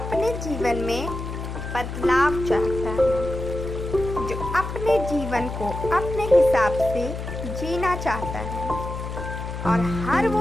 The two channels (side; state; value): left; noise; hum, 6 dB below the sound